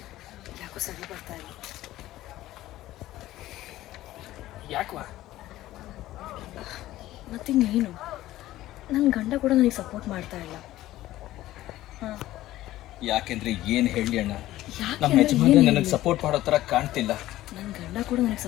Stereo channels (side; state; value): right; quieter; 15.3 dB